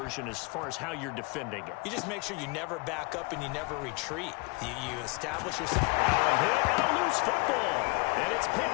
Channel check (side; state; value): right; quieter; 29.3 dB